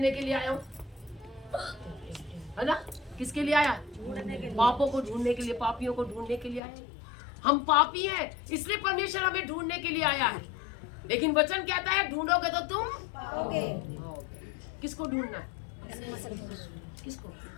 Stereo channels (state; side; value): drops out; right; at 6.6 s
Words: के लिए आया हूँ, है ना? किसके लिए आया? पापों को ढूंढने के लिए, पापियों को ढूंढने के लिए आया। हम पापी हैं, इसलिए परमेश्वर हमें ढूंढने के लिए आया है। लेकिन वचन कहता है ढूंढोगे तो तुम पाओगे। किसको ढूंढना है? किसको?